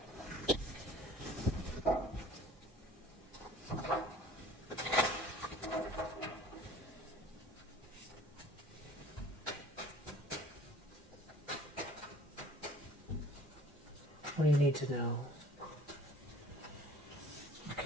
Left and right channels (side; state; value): both; normal; correlation 0.50